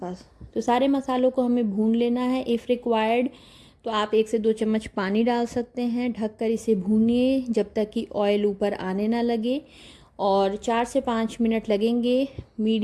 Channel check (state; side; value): identical; both; correlation 1.00